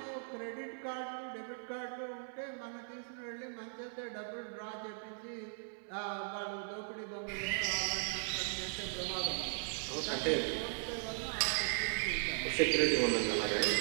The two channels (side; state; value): left; silent; 52 dB below the other